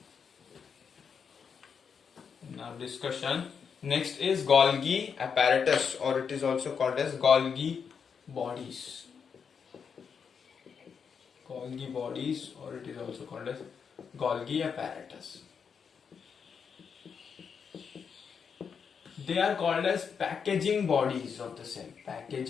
in our discussion, next is Golgi apparatus, or it is also called as Golgi bodies. Or it is also called as Golgi apparatus. They are called as packaging bodies of the cell.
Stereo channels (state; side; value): quieter; right; 6.5 dB